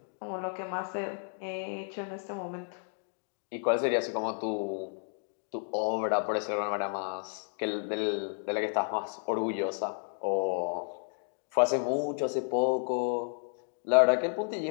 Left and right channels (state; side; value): silent; right; 56 dB below the other